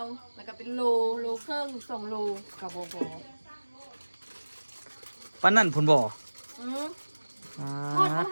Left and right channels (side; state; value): both; inverted; correlation -1.00